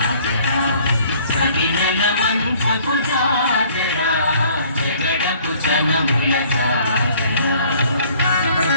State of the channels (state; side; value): inverted; both; correlation -0.57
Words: సడినల మంచపు జాజరా జగడపు చనవుల జాజరా